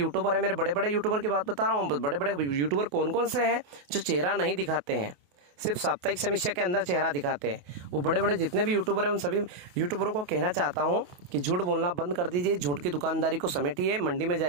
है, मेरे बड़े बड़े यूट्यूबर की बात बता रहा हूँ, बड़े बड़े यूट्यूबर कौन कौन से हैं जो चेहरा नहीं दिखाते हैं, सिर्फ साप्ताहिक समीक्षा के अंदर चेहरा दिखाते हैं। वो बड़े बड़े जितने भी यूट्यूबर हैं उन सभी यूट्यूबरों को कहना चाहता हूँ कि झूठ बोलना बंद कर दीजिए, झूठ की दुकानदारी को समेटिए, मंडी में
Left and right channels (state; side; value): late; left; 28 ms